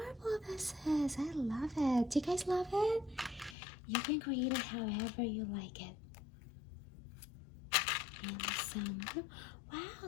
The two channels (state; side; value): drops out; right; at 3.6 s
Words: this is. I love it. Do you guys love it? You can create it however you like it. And some blue. Wow,